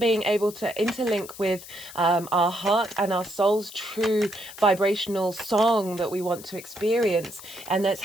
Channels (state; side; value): noise; left; hiss, 16 dB below the sound